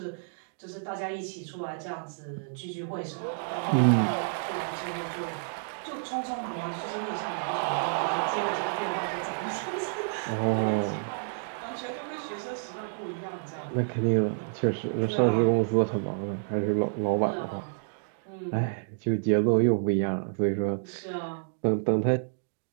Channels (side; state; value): left; silent; digital silence